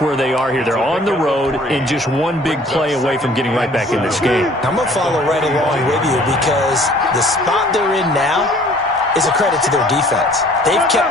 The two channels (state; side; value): normal; both; correlation 0.54